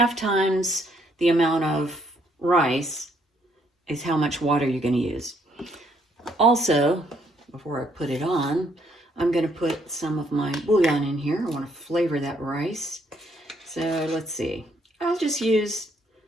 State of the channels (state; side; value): normal; both; correlation 0.69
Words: times the amount of rice is how much water you're going to use. Also, before I put it on, I'm going to put some of my bouillon in here. I want to flavor that rice. So let's see. I'll just use